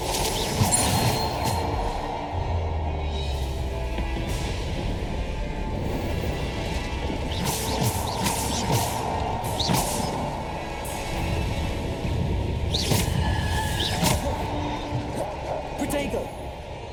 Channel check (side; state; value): both; identical; correlation 1.00